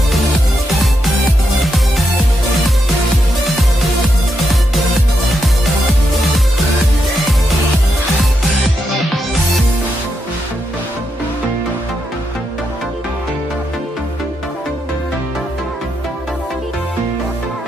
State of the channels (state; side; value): normal; both; correlation 0.83